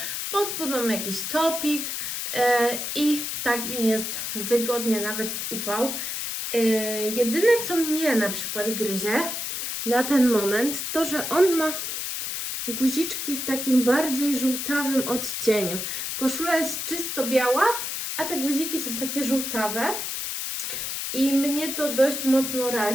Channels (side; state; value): left; noise; hiss, 3 dB below the sound